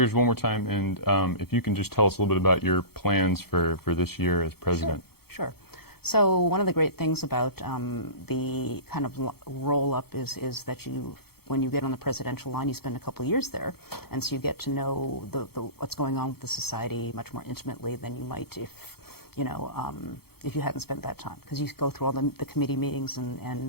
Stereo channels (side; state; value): right; late; 0.96 ms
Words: one more time, and if you can just tell us a little bit about your plans for this year as president. Sure. So one of the great things about the kind of roll-up is that when you get on the presidential line, you spend a couple of years there, and so you get to know what's going on with the society much more intimately than you might if, you know, if you hadn't spent that time, because you go through all the committee meetings